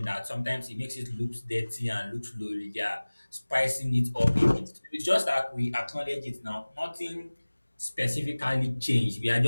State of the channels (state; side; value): inverted; both; correlation -1.00